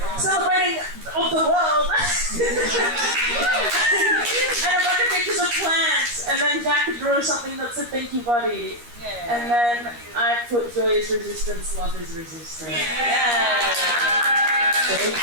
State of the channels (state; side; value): late; left; 13 ms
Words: celebrating of the world, and a bunch of pictures of plants. And then Jack drew something that's a thank you buddy. And then I put joy is resistance, love is resistance.